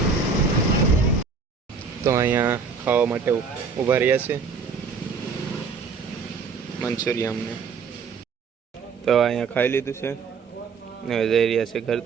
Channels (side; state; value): left; quieter; 5.2 dB